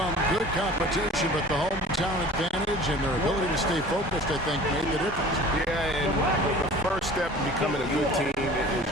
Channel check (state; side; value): normal; both; correlation 0.44